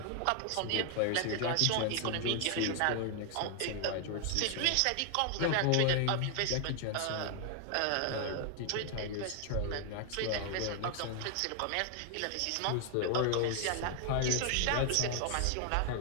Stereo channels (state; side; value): different; both; correlation 0.00